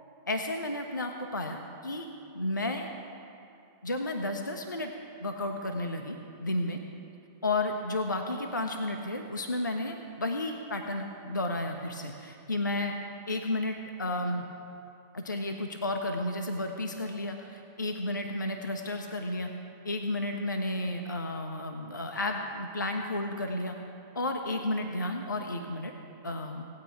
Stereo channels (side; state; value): both; inverted; correlation -0.53